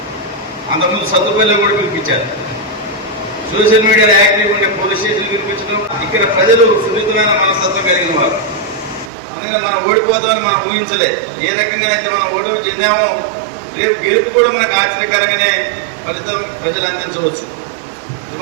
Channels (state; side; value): drops out; left; at 9.1 s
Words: అంతకుముందు సత్తుపల్లిలో కూడా పిలిపించారు. సోషల్ మీడియాలో యాక్టివ్ ఉంటే పోలీస్ స్టేషన్ పిలిపించడం. ఇక్కడ ప్రజలు సున్నితమైన మనస్తత్వం కలిగిన వారు. అందుకని మనం ఓడిపోతామని మనం ఊహించలే. ఏ రకంగానైతే మనం ఓటమి చెందామో రేపు గెలుపు కూడా మనకు ఆశ్చర్యకరంగానే ఫలితం ప్రజలు అందించవచ్చు.